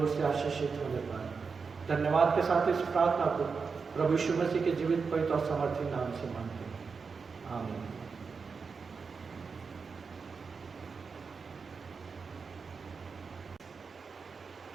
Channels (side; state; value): left; quieter; 5.1 dB